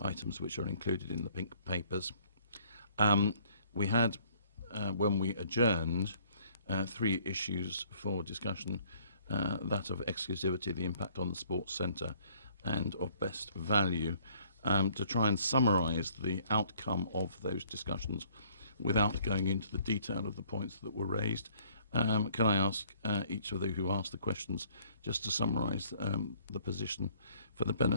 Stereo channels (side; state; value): both; inverted; correlation -0.60